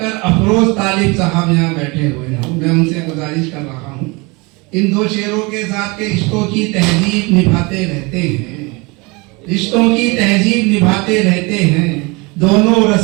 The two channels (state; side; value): quieter; left; 26.8 dB